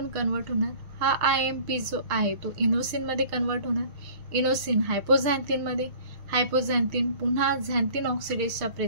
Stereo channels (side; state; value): left; late; 6.6 ms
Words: कन्वर्ट होणार. हा IMP जो आहे तो इनोसिन मध्ये कन्वर्ट होणार. इनोसिन हायपोझॅन्थिन मध्ये, हायपोझॅन्थिन पुन्हा झॅन्थिन ऑक्सिडेजच्या